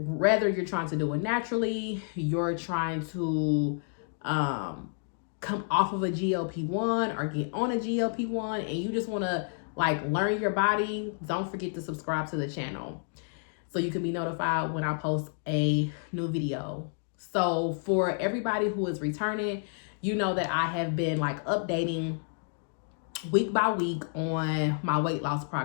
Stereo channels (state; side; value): silent; right; digital silence